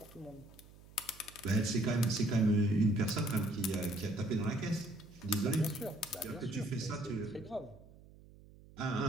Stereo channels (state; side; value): noise; right; hum, 22 dB below the sound